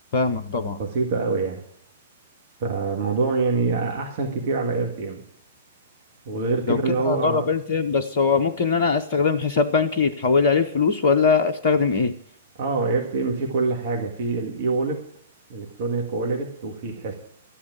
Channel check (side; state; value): both; inverted; correlation -0.42